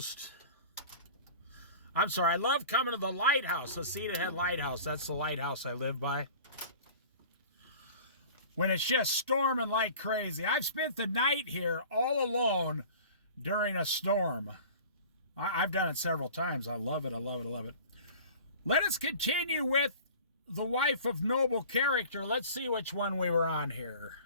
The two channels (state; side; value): inverted; both; correlation -0.42